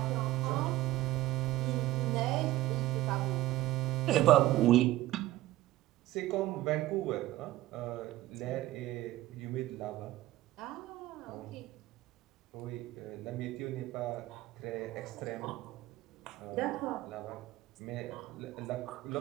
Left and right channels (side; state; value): left; quieter; 16.1 dB